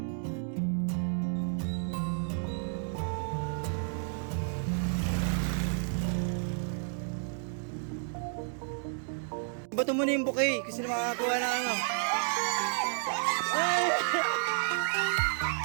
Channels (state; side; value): silent; left; 57 dB below the other